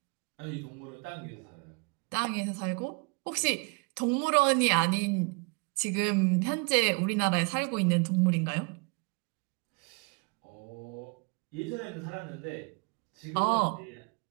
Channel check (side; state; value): left; quieter; 32.9 dB